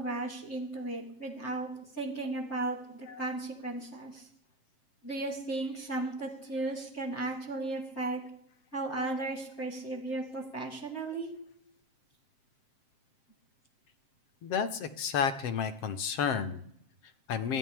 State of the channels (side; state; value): right; late; 7.6 ms